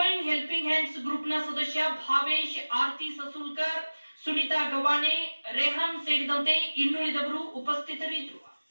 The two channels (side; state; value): both; inverted; correlation -1.00